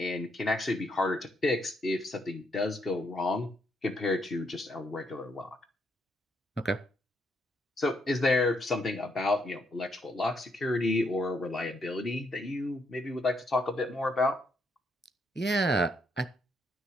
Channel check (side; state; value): both; normal; correlation 0.75